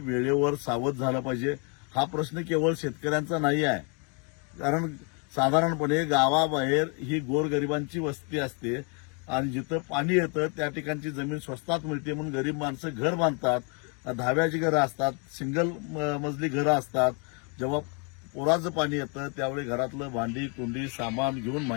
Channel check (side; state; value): right; quieter; 36.0 dB